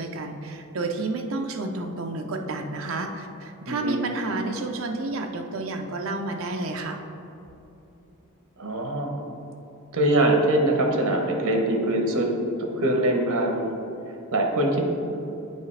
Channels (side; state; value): both; normal; correlation 0.15